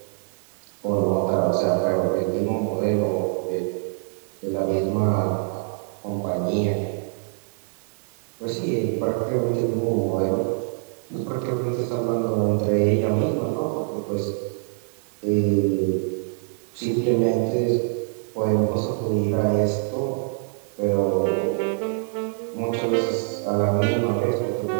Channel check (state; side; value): silent; left; 55 dB below the other